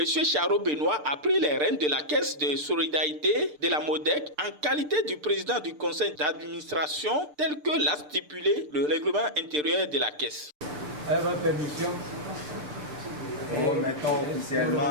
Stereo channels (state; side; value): late; left; 6.7 ms